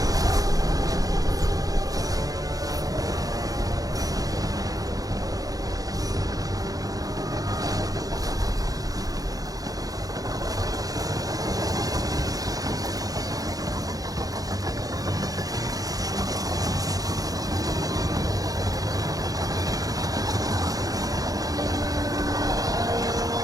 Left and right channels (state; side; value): late; left; 0.18 ms